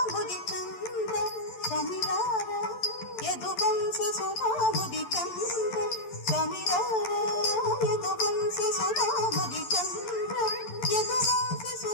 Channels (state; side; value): late; right; 11 ms